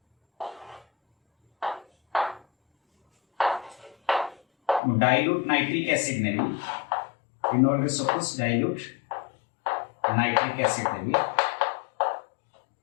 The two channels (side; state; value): right; drops out; at 4.8 s